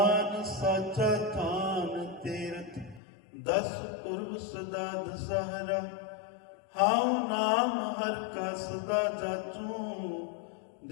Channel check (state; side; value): drops out; right; at 3.0 s